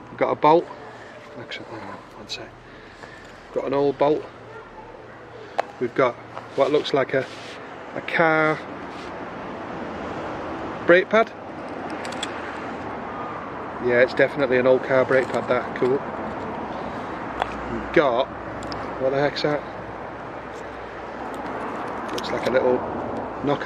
We've got a bolt. Actually, hang on, one sec. Got an old bolt. We've got what looks like a car brake pad. Yeah, it's definitely an old car brake pad, that. Cool. We've got, what the heck's that? Looks like a little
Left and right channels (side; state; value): both; identical; correlation 1.00